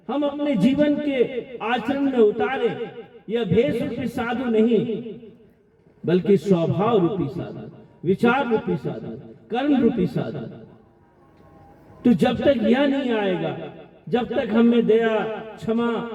हम अपने जीवन के आचरण में उतारे। यह भेष रूपी साधु नहीं, बल्कि स्वभाव रूपी साधु, विचार रूपी साधु, कर्म रूपी साधु। तो जब तक यह नहीं आएगा, जब तक हमें दया, क्षमा,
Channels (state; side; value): identical; both; correlation 1.00